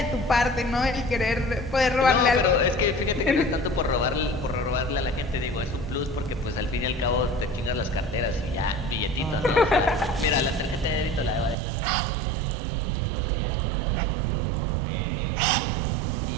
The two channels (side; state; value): left; drops out; at 11.6 s